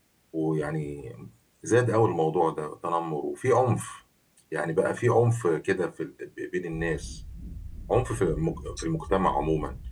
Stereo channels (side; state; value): both; identical; correlation 1.00